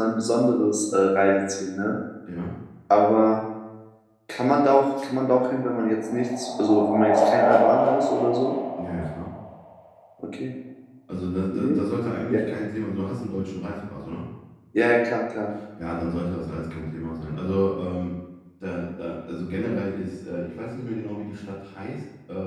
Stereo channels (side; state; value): both; identical; correlation 1.00